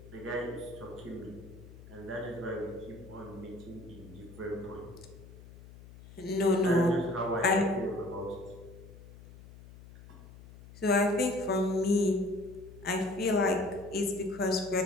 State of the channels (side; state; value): left; noise; hum, 18 dB below the sound